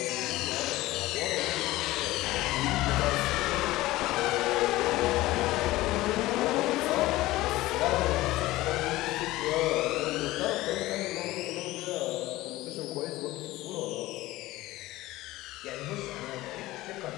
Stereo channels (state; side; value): quieter; right; 17.8 dB